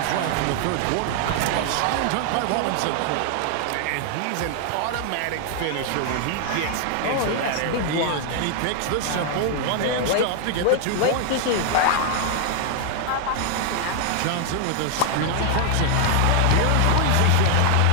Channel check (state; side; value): different; both; correlation 0.00